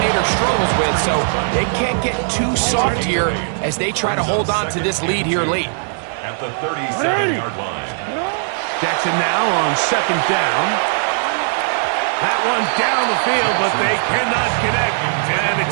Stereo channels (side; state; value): left; silent; digital silence